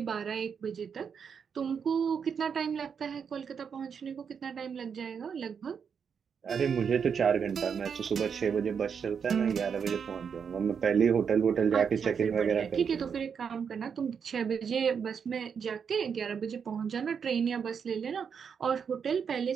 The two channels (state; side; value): quieter; left; 6.8 dB